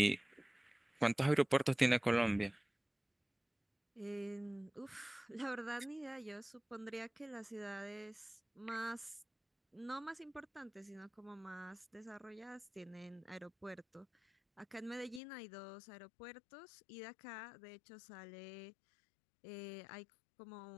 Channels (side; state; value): right; drops out; at 15.2 s